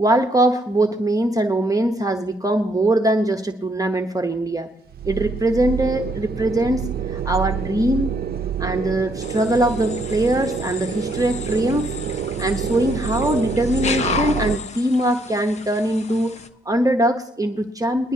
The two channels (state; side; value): normal; both; correlation 0.71